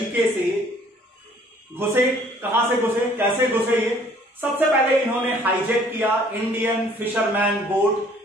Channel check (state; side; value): normal; both; correlation 0.57